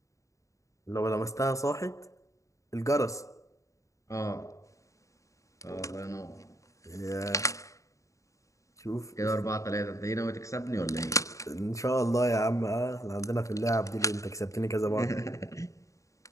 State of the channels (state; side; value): late; right; 0.15 ms